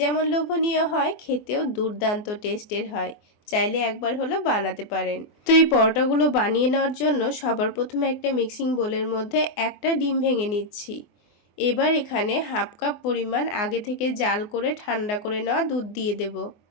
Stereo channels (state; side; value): late; right; 24 ms